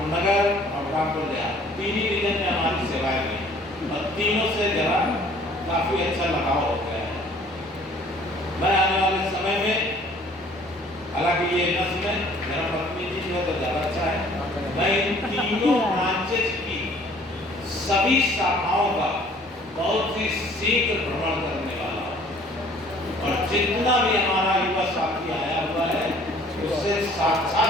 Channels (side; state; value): both; normal; correlation 0.55